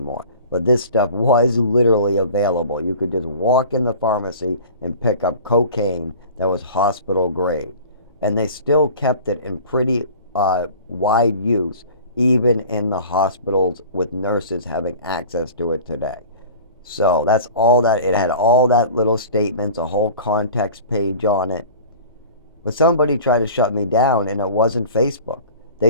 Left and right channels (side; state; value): both; inverted; correlation -0.41